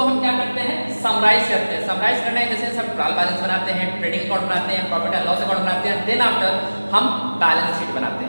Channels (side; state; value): both; inverted; correlation -1.00